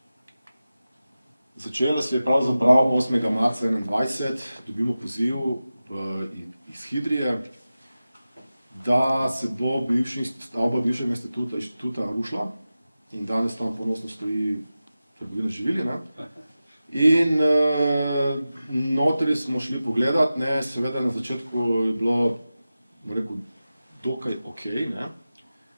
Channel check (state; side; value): inverted; both; correlation -0.94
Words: Začela se je pravzaprav 8. marca 2021, dobimo poziv iz Hidrije, da se bo stavba bivšega inštituta rušila in danes tam ponosno stoji trgovina z živili, ne. In notri smo šli pogledat, ne, seveda na začetku je bilo, bom rekel, dokaj okej, ne.